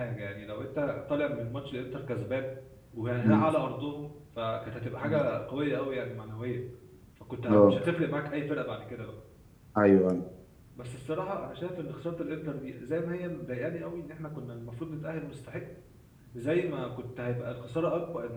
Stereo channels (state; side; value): identical; both; correlation 1.00